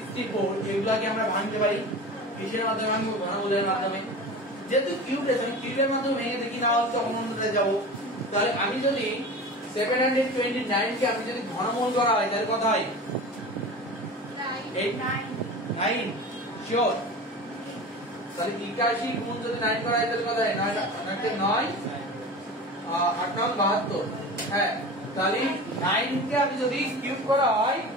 এগুলাকে আমরা ভাঙতে পারি কিসের মাধ্যমে ভাঙবো ঘনমূলের মাধ্যমে যেহেতু কিউব রয়েছে আমি কিউবের মাধ্যমে ভেঙে দেখি না হলে তখন অন্যটাতে যাব তাহলে আমি যদি 729 কে আমি যদি ঘনমূল করা হয় তাহলে কত হয় 9 শিওর তাহলে 81 গুণ যদি 9 করা হয় তাহলে কত হয় 9 8 72 হ্যাঁ তাহলে 9 কে আমি যদি কিউব করা হয়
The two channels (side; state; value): both; normal; correlation 0.33